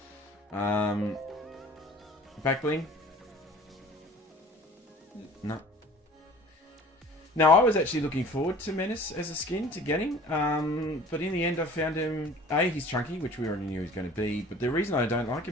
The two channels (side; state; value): both; normal; correlation 0.46